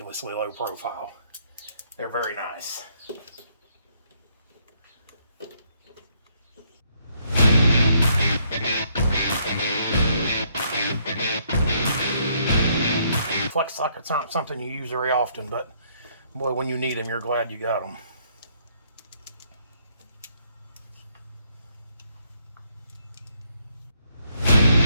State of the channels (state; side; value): inverted; both; correlation -0.70